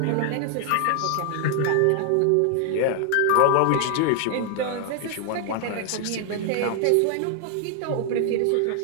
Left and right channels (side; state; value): both; different; correlation 0.00